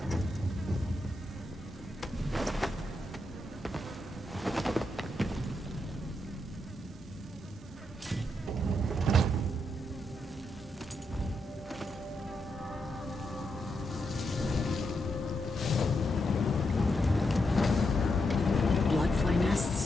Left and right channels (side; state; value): both; normal; correlation 0.82